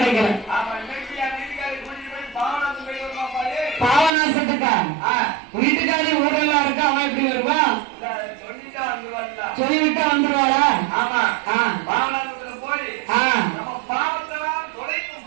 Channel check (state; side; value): drops out; left; at 4.1 s